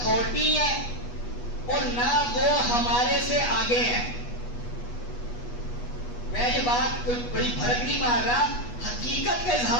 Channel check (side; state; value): right; late; 8.3 ms